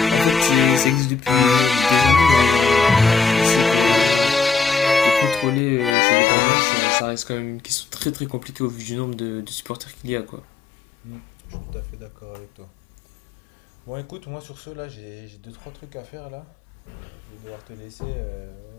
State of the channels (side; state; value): right; drops out; at 6.0 s